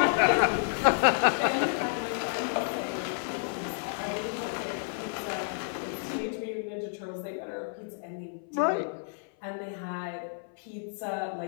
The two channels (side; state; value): right; silent; 57 dB below the other